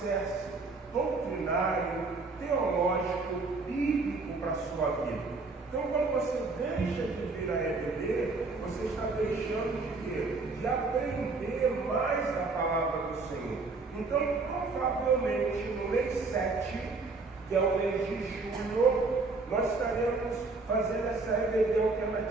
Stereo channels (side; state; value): left; quieter; 3.8 dB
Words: doutrinário, teológico, bíblico para a sua vida. Então, quando você deixa de vir à EBD, você está deixando de quê? De aprender mais a palavra do Senhor. Então, provavelmente, no mês 7, que é o mês de julho, nós estaremos fazendo essa EBD